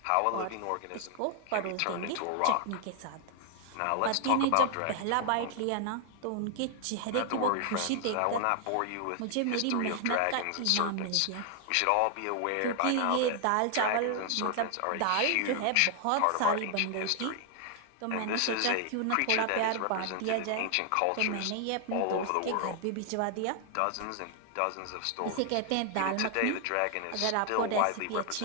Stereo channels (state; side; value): different; both; correlation 0.00